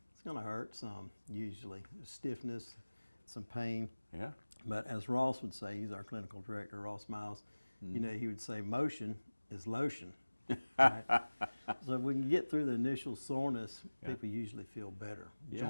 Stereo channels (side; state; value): both; inverted; correlation -1.00